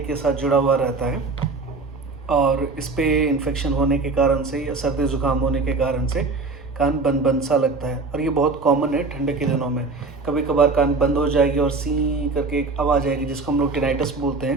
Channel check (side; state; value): left; quieter; 3.8 dB